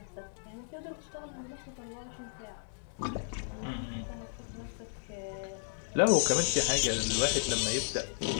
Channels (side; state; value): right; silent; 55 dB below the other